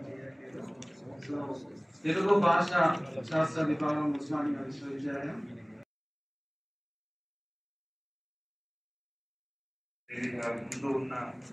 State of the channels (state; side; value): identical; both; correlation 1.00